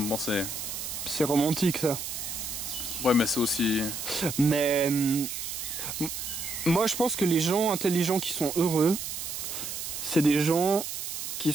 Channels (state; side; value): noise; right; hiss, 6 dB below the sound